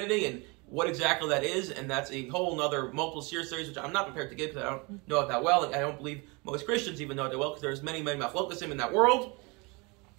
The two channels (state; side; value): quieter; left; 28.3 dB